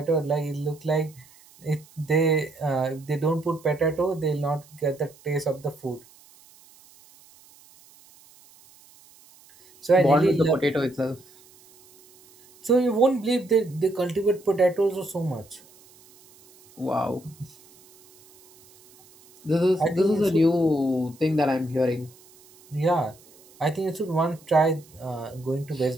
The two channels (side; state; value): right; noise; hiss, 26 dB below the sound